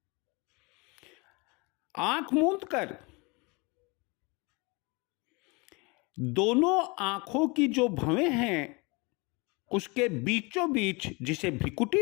आंख मूंद कर दोनों आंखों की जो भवें हैं उसके बीचों बीच, जिसे भ्रिकुटी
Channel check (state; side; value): quieter; right; 27.9 dB